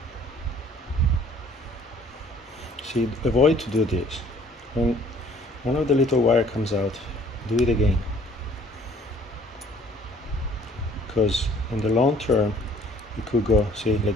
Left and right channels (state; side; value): normal; both; correlation 0.56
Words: See, avoid to do this. When one of the little wire comes out, do it again. Because in the long term, it could go, see,